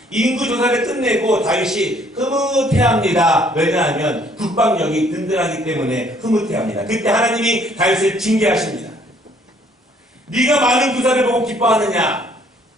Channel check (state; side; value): normal; both; correlation 0.62